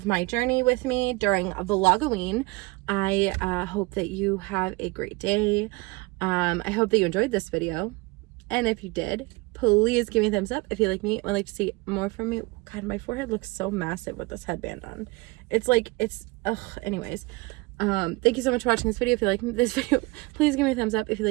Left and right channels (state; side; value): quieter; left; 23.8 dB